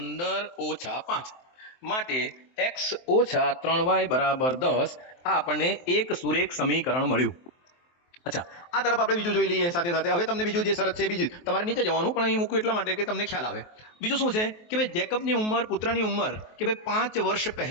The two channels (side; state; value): right; late; 23 ms